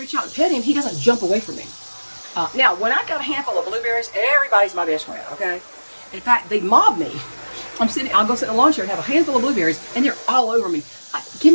out and pet him, he doesn't jump away from me. Now, when I got a handful of blueberries, everybody's my best friend, okay? In fact, they mob me. I'll go sit in the lawn chair and have a handful of blueberries, and they're all over me.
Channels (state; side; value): inverted; both; correlation -1.00